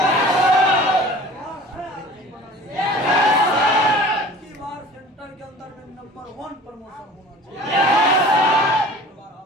की बार सेंटर के अंदर में नंबर 1 प्रमोशन होना चाहिए।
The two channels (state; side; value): normal; both; correlation 0.44